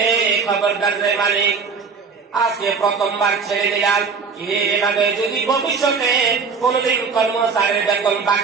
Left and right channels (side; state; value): left; quieter; 5.3 dB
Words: খবরদার রে মালিক, আজকে প্রথমবার ছেড়ে দিলাম, এভাবে যদি ভবিষ্যতে কোনদিন কর্মচারীর বেতন